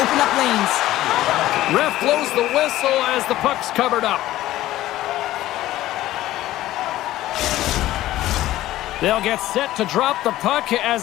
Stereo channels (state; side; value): quieter; right; 15.1 dB